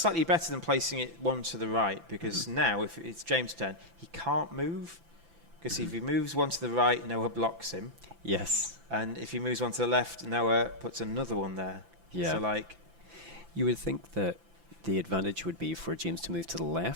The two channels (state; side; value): late; left; 5.9 ms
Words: better than placing it one to the right, because now if it's James' turn, he can't move. Because if he moves one to the right, Noah blocks him. Yes. And if he moves one to the left, Noah puts another one there. Yeah. So you would think that the advantage would be for James to move to the